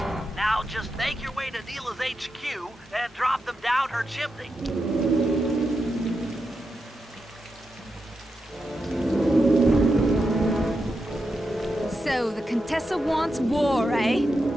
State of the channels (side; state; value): both; normal; correlation 0.87